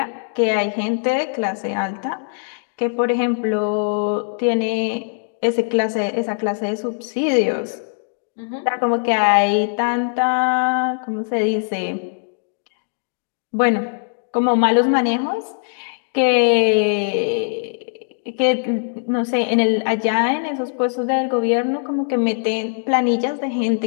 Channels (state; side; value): silent; right; digital silence